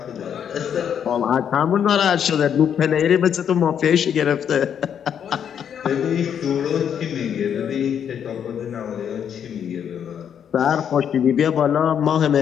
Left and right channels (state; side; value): quieter; right; 8.5 dB